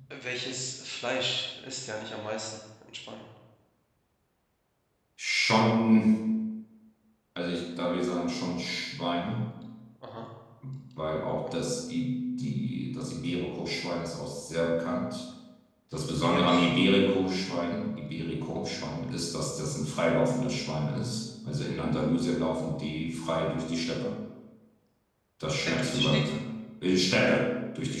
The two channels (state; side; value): identical; both; correlation 1.00